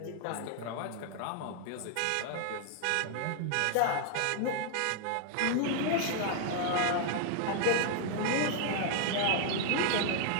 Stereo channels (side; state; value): both; different; correlation 0.00